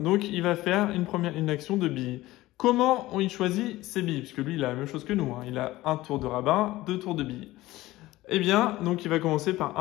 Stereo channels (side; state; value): right; quieter; 17.6 dB